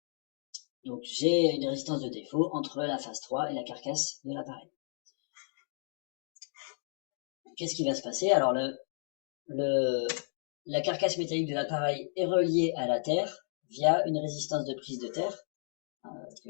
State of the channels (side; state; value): right; silent; digital silence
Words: Donc, j'ai une résistance de défaut entre la phase 3 et la carcasse de l'appareil. Qu'est-ce qui va se passer? Alors, la carcasse métallique de l'appareil est reliée à la terre via une résistance de prise de terre